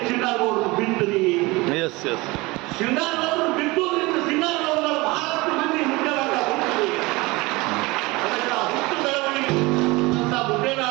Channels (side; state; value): left; quieter; 22.8 dB